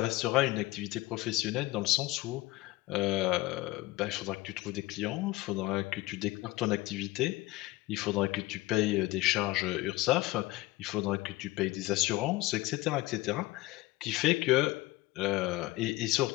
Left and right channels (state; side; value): quieter; right; 19.0 dB